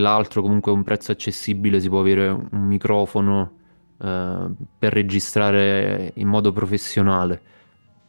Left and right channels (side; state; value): both; inverted; correlation -1.00